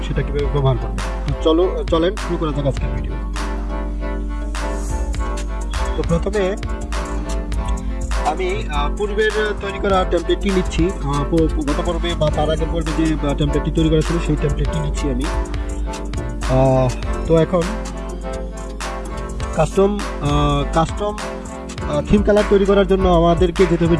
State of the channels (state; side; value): identical; both; correlation 1.00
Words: সেটা কিভাবে ব্যবহার করবেন। তো চলেন শুরু করা যাক আজকের ভিডিও। তো প্রথমে আমি পূর্বের তৈরি করা টেমপ্লেটটি নিচ্ছি। গত পর্বে বা তার আগের পর্বে যে টেমপ্লেটটি তৈরি করা ছিল সেই টেমপ্লেটটি নিচ্ছি আমি। তো এখন কাস্টম থিম কালার তৈরি করার জন্য আমাদেরকে যেতে হবে